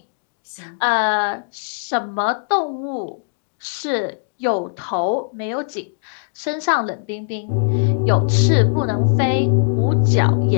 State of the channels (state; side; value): silent; right; digital silence